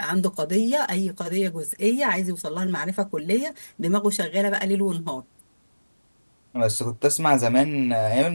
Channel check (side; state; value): both; inverted; correlation -1.00